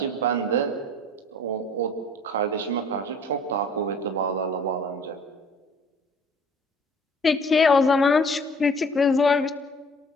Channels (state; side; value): normal; both; correlation 0.52